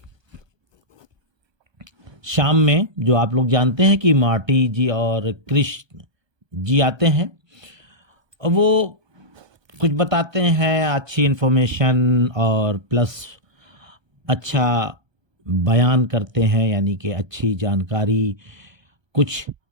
शाम में जो आप लोग जानते हैं कि मार्टी जी और कृष्ण जी आते हैं, वो कुछ बताते हैं, अच्छी इन्फॉर्मेशन और प्लस अच्छा बयान करते हैं, यानी कि अच्छी जानकारी, कुछ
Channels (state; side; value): late; left; 1.2 ms